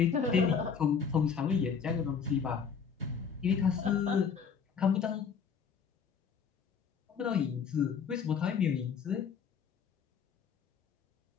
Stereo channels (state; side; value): quieter; right; 6.5 dB